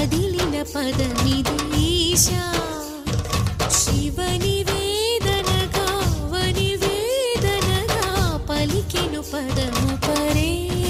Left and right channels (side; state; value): both; identical; correlation 1.00